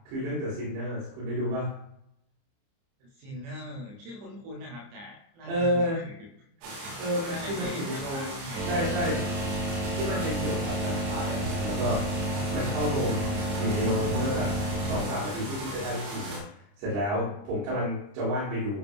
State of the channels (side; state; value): left; late; 30 ms